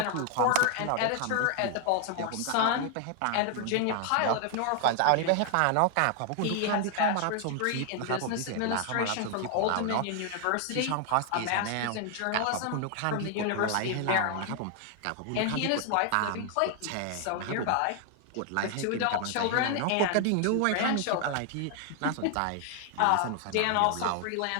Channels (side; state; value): both; different; correlation 0.00